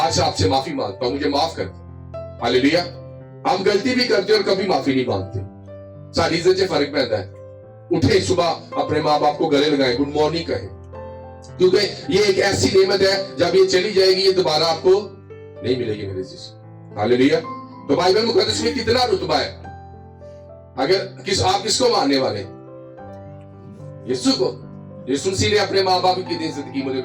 آپ سے معافی مانگتا ہوں, مجھے معاف کر دیں. ہاللیلویا. ہم غلطی بھی کرتے اور کبھی معافی نہیں مانگتے, ساری عزت سے فرق پڑتا ہے. اٹھے صبح اپنے ماں باپ کو گلے لگائیں, گڈ مارننگ کہیں, کیونکہ یہ ایک ایسی نعمت ہے جب یہ چلی جائے گی یہ دوبارہ آپ کو نہیں ملے گی میرے جیسے. ہاللیلویا. تو بائبل مقدس میں کتنا رتبہ ہے. اگر آپ کس کو ماننے والے, یسوع کو. یسوع مسیح نے اپنے ماں باپ کی کتنی عزت کی مجھے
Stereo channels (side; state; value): both; identical; correlation 1.00